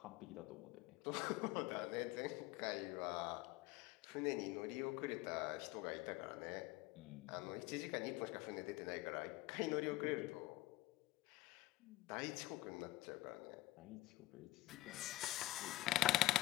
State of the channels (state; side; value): quieter; right; 17.2 dB